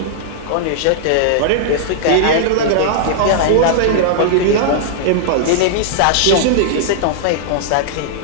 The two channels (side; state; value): both; different; correlation -0.01